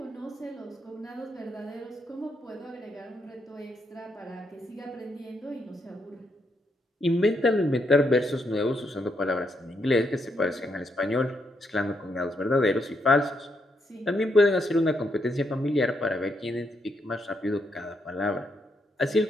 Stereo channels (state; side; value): normal; both; correlation 0.78